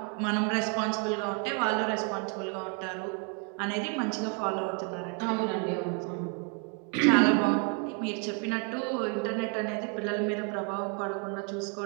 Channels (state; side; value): quieter; left; 38.0 dB